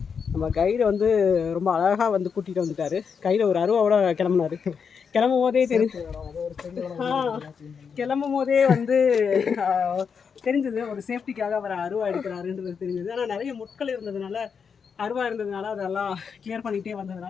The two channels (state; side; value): quieter; right; 6.3 dB